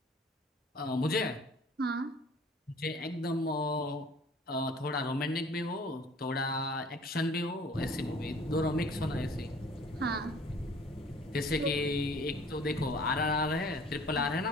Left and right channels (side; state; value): both; normal; correlation 0.51